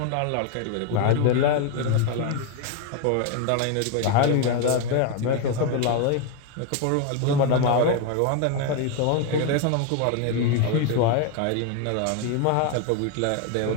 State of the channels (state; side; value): different; both; correlation 0.01